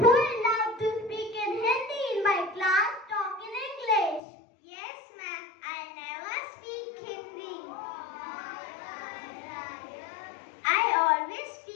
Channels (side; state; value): right; drops out; at 4.2 s